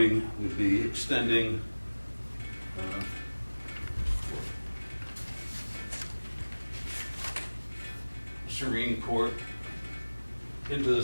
would be extending Serene Court into the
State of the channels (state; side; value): inverted; both; correlation -1.00